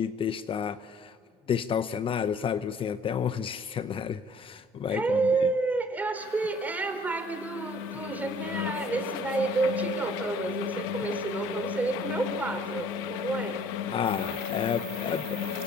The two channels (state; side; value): normal; both; correlation 0.54